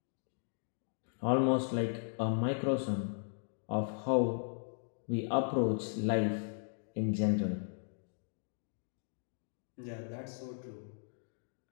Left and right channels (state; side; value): silent; right; digital silence